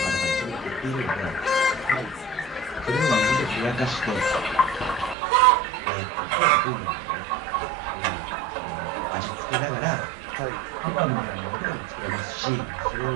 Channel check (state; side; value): drops out; left; at 5.2 s